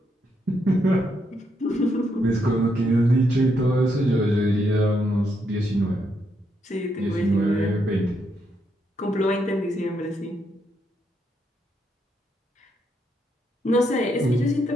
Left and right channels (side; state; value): both; normal; correlation 0.78